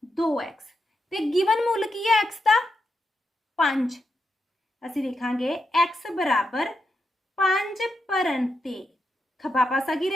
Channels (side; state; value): both; normal; correlation 0.84